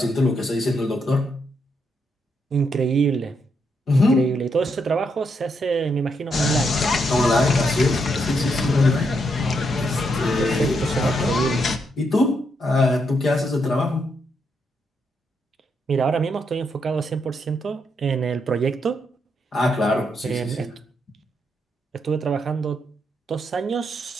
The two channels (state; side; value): normal; both; correlation 0.79